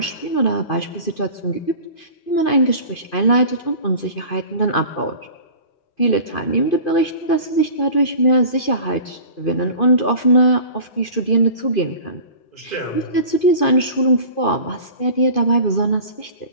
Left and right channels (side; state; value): right; late; 2.5 ms